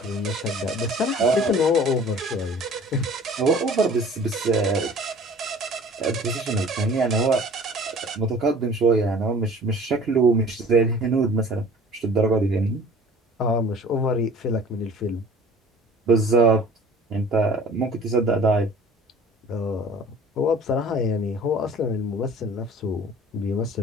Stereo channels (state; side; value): normal; both; correlation 0.47